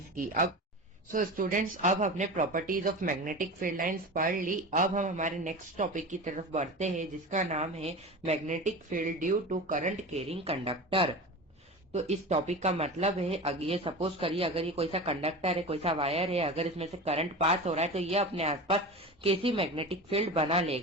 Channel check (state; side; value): normal; both; correlation 0.30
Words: की। अब सो स्टूडेंट्स, अब हमने properties of magnetic field lines पढ़ ली। अब हम हमारे नेक्स्ट टॉपिक की तरफ बढ़ते हैं जिसका नाम है magnetic field due to current carrying conductor. तो इस टॉपिक का मतलब है ये सपोज करिए अगर ये कोई सा कंडक्टर है, कोई सा वायर है, अगर इसमें से करंट पास हो रहा है तो ये अपने आसपास कैसी मैग्नेटिक फील्ड बना